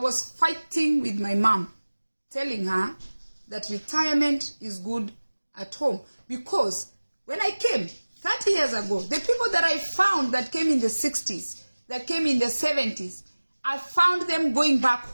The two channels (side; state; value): both; inverted; correlation -1.00